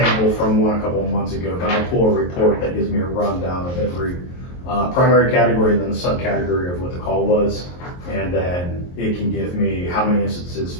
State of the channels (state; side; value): late; right; 23 ms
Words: from one a couple of months ago. But I pull a report that gives me a rundown of every primary category and then the subcategory of what the call was, and then it can give me how many instances